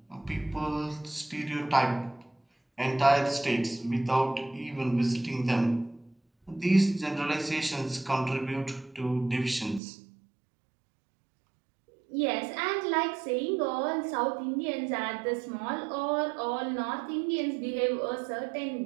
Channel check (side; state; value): left; drops out; at 9.8 s